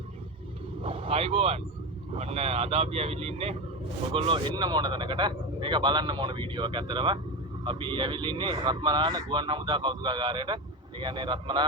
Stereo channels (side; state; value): both; normal; correlation 0.19